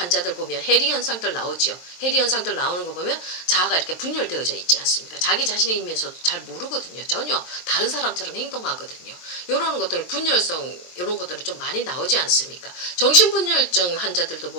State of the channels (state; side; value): late; right; 23 ms